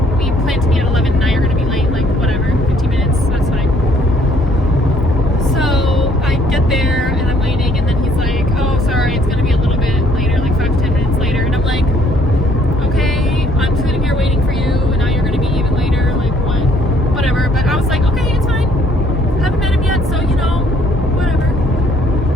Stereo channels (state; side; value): normal; both; correlation 0.63